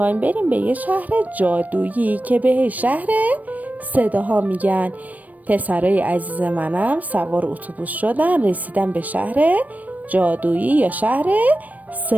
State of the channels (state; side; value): late; left; 0.075 ms